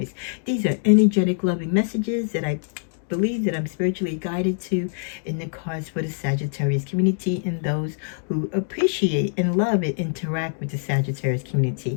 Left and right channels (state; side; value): silent; right; digital silence